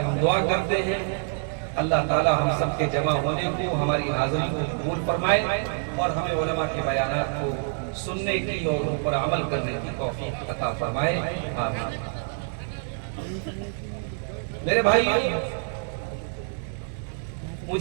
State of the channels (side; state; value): left; silent; 61 dB below the other